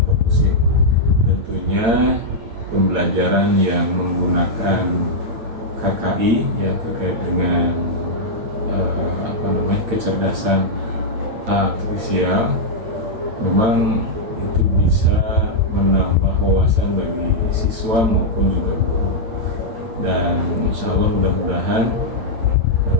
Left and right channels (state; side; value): late; left; 8.9 ms